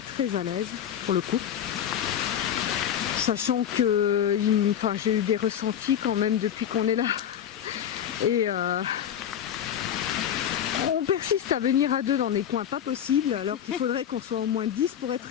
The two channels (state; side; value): quieter; right; 9.6 dB